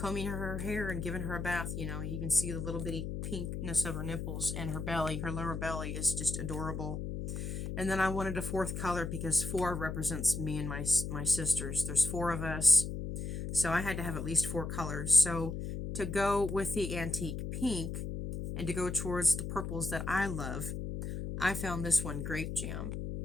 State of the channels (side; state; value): left; noise; hum, 4 dB below the sound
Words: her hair and giving her a bath, you know, you can see the little bitty pinkness of her nipples, and her belly. Her lower belly is just adorable. And then I wanted a 4th color because 4 represents me and my sisters. There's 4 of us. So I had to have at least 4 colors. So to go with the antique pink and to go towards the purples that I love, I found this one, Grape Jam.